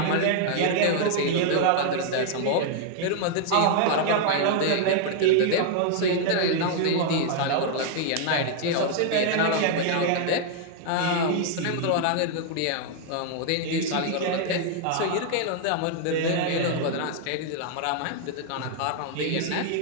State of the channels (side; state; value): both; different; correlation 0.00